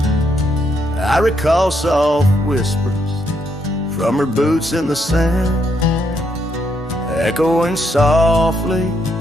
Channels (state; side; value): normal; both; correlation 0.76